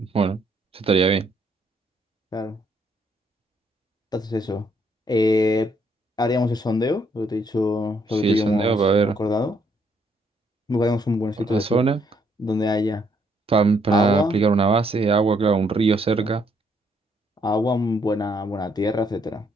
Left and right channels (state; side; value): normal; both; correlation 0.71